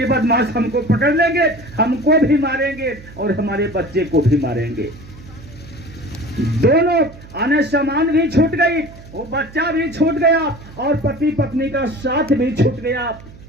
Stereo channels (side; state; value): right; noise; hum, 19 dB below the sound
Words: बदमाश हमको पकड़ लेंगे, हमको भी मारेंगे और हमारे बच्चे को भी मारेंगे। दोनों आने सामान भी छूट गई, वो बच्चा भी छूट गया और पति पत्नी का साथ भी छूट गया।